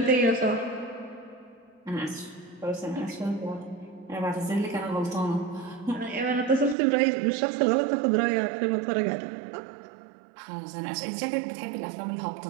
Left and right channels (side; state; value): left; drops out; at 6.8 s